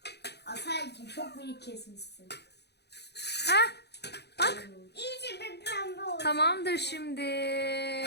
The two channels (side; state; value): right; late; 0.48 ms